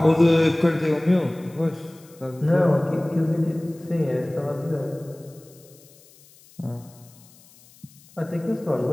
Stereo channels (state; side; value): noise; left; hiss, 26 dB below the sound